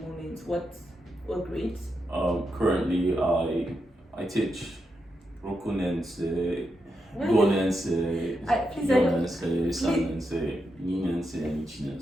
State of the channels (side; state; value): both; normal; correlation 0.85